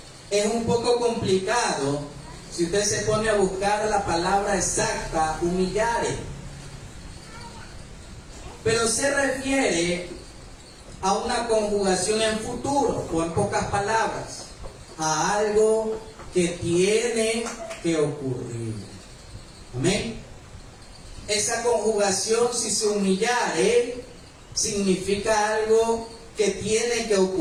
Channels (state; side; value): identical; both; correlation 1.00